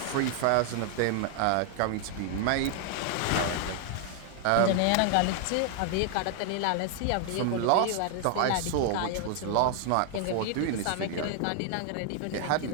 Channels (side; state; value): both; different; correlation 0.00